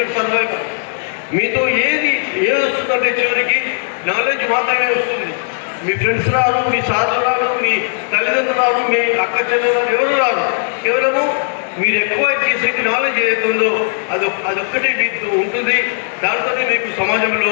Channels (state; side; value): silent; right; digital silence